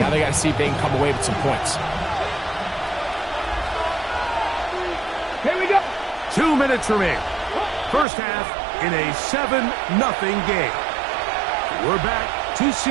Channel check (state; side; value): drops out; left; at 8.1 s